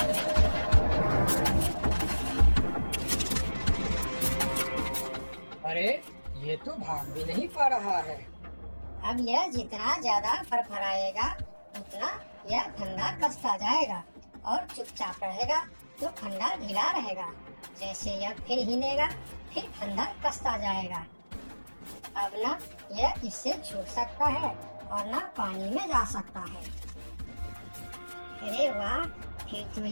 अरे ये तो भाग भी नहीं पा रहा है। अब यह जितना ज्यादा फरफराएगा उतना यह फंदा कसता जाएगा और चुपचाप रहेगा तो फंदा ढीला रहेगा। जैसे यह फिर हिलेगा फिर फंदा कसता जाएगा। अब ना यह इससे छूट सकता है और ना पानी में जा सकता है। अरे वाह, फिर तो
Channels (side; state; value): both; inverted; correlation -1.00